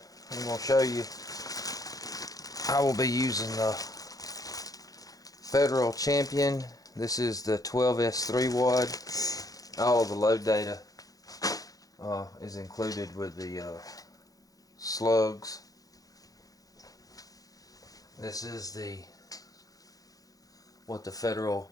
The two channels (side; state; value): right; late; 0.17 ms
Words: I'm going to show you I will be using the Federal Champion. This is the 12S3 wad. All of the load data is included with the Slugs. This is what the